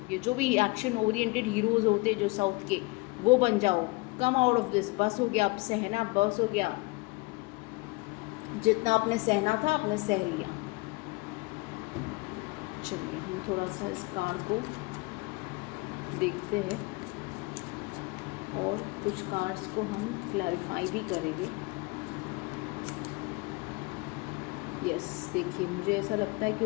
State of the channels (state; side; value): quieter; right; 26.0 dB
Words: ये जो भी एक्शन ओरिएंटेड हीरोज़ होते हैं जो साउथ के, वो बन जाओ. कम आउट ऑफ दिस. बस हो गया. अब सहना बस हो गया. जितना आपने सहना था आपने सह लिया. चलिए हम थोड़ा सा इस कार्ड को देखते हैं और कुछ कार्ड्स को हम क्लैरिफाई भी करेंगे. यस, देखिए मुझे ऐसा लगता है कि